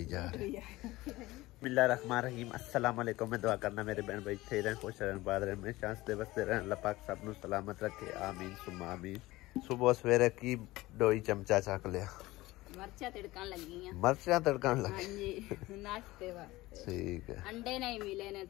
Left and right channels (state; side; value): quieter; right; 18.9 dB